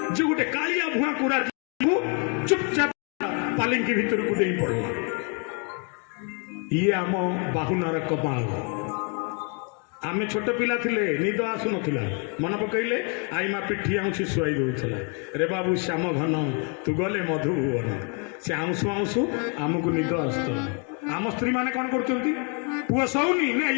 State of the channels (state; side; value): quieter; right; 37.4 dB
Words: ଯେ ଗୋଟେ କାଳିଆ ଭୁଆଁକୁ ଚୁପଚାପ ପାଲିଙ୍କି ଭିତରକୁ ଦେଇ ପଡ଼ିଲା। ଇଏ ଆମ ବାହୁନାର କମାଲ। ଆମେ ଛୋଟ ପିଲା ଥିଲେ, ନିଦ ଆସୁନଥିଲା, ମନେ ପକେଇଲେ ଆଇମା ପିଠି ଆଉଁସି ଶୁଆଇ ଦଉଥିଲା। ରେ ବାବୁ ଶ୍ୟାମ ଘନ ତୁ ଗଲେ ମଧୁଭୁବନ, ସେ ଆଉଁସୁ ଆଉଁସୁ ଆମକୁ ନିଦ ଆସୁଥିଲା। ଆମ ସ୍ତ୍ରୀ ମାନେ କ'ଣ କରୁଛନ୍ତି? ପୁଅ ଶୋଉନି ନା